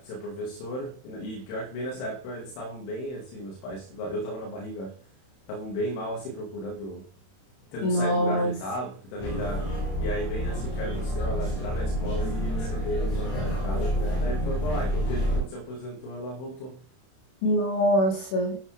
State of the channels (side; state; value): right; late; 31 ms